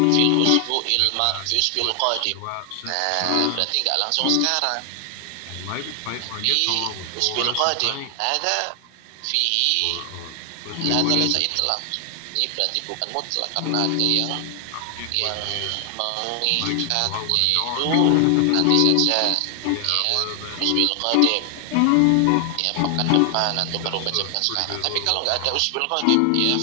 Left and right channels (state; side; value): different; both; correlation 0.00